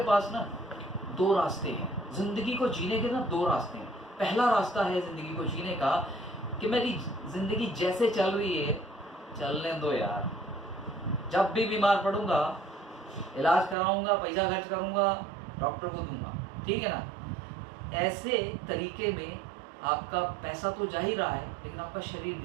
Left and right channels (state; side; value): drops out; left; at 13.8 s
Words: पास ना दो रास्ते हैं ज़िंदगी को जीने के, ना दो रास्ते हैं। पहला रास्ता है ज़िंदगी को जीने का कि मेरी ज़िंदगी जैसे चल रही है चलने दो यार, जब भी बीमार पड़ूंगा इलाज कराऊंगा, पैसा खर्च करूंगा, डॉक्टर को दूंगा, ठीक है ना। ऐसे तरीके में आपका पैसा तो जा ही रहा है लेकिन आपका शरीर